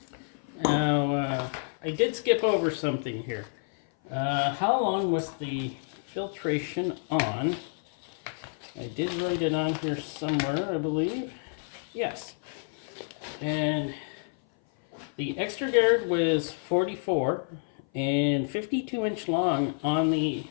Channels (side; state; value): right; silent; 56 dB below the other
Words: Now, I did skip over something here. How long was the filtration on? I did write it on here somewhere, I believe. Yes. And the extra guard was 44 and 52-inch long on the